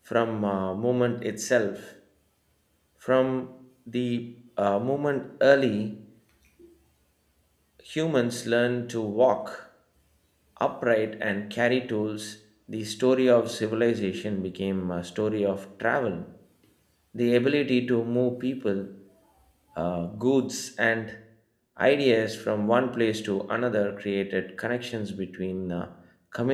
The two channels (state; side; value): identical; both; correlation 1.00